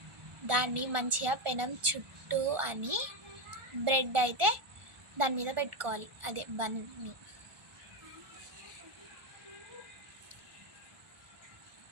దాన్ని మంచిగా పెనం చుట్టూ అని బ్రెడ్ అయితే దాని మీద పెట్టుకోవాలి, అదే బన్ని.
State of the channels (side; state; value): left; late; 1.5 ms